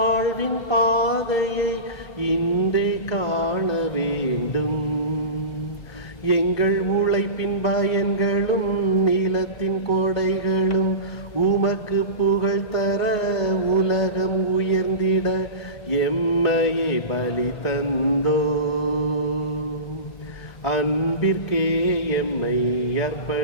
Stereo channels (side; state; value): right; late; 2.2 ms